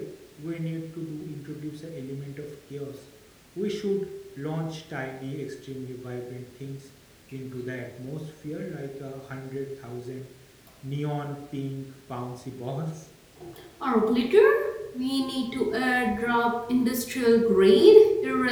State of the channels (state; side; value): identical; both; correlation 1.00